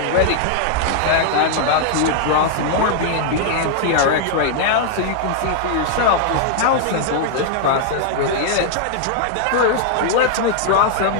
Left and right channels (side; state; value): both; different; correlation -0.01